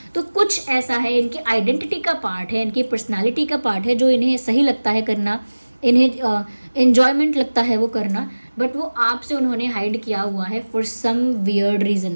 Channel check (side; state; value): both; inverted; correlation -1.00